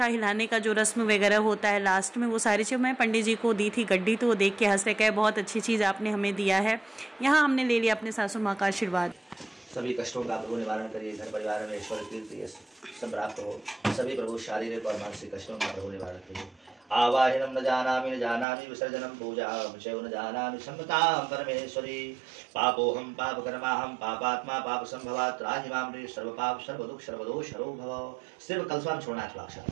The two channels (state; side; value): drops out; left; at 18.4 s